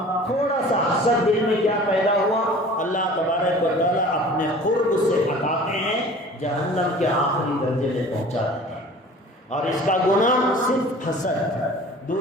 تھوڑا سا حسد دل میں کیا پیدا ہوا، اللہ تبارک و تعالیٰ اپنے قرب سے ہٹاتے ہیں، جہنم کے آخری درجے میں پہنچا دیتے ہیں۔ اور اس کا گناہ صرف حسد،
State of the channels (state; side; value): normal; both; correlation 0.44